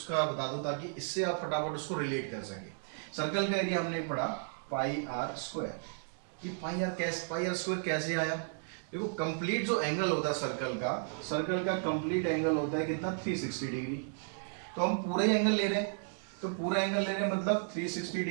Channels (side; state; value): left; silent; digital silence